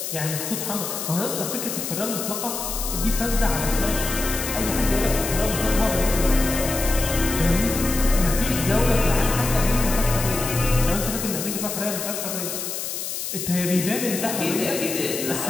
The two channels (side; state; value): left; noise; hiss, 5 dB below the sound